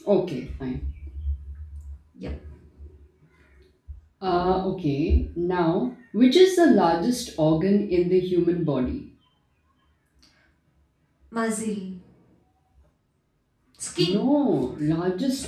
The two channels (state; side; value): identical; both; correlation 1.00